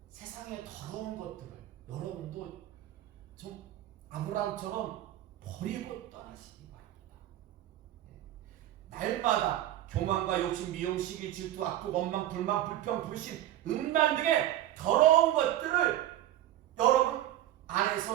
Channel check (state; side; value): quieter; left; 13.1 dB